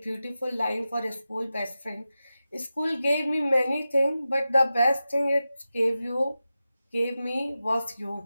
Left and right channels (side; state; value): both; inverted; correlation -0.93